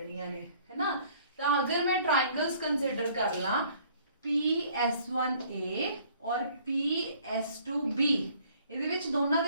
ने है ना। तो अगर मैं ट्रायंगल्स कंसीडर कर ला PS1A और PS2B, ਇਹਦੇ ਵਿੱਚ ਦੋਨਾਂ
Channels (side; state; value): both; inverted; correlation -0.58